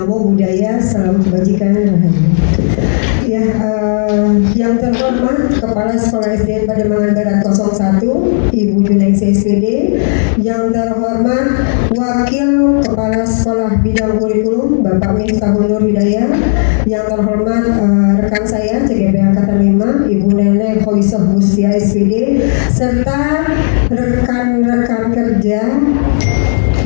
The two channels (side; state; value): right; silent; digital silence